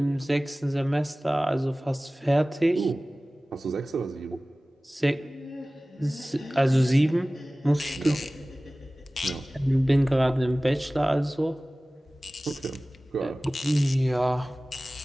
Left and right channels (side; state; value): both; normal; correlation 0.98